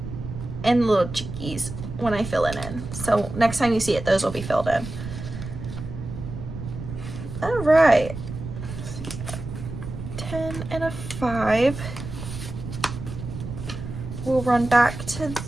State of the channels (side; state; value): right; noise; rumble, 9 dB below the sound